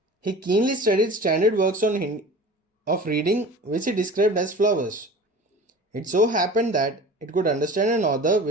He keenly studied standard works of reading, which he described as flowers. It so happened that it could understand an author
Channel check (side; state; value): both; normal; correlation 0.39